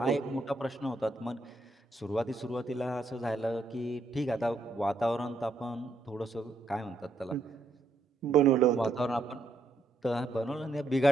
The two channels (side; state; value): left; quieter; 3.1 dB